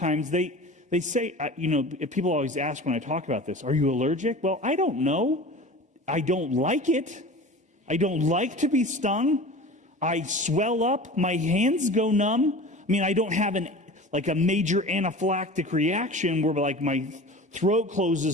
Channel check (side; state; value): both; normal; correlation 0.37